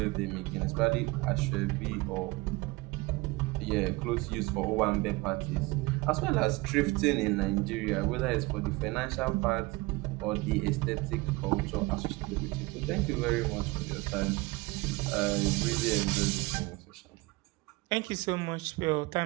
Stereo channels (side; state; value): left; quieter; 23.0 dB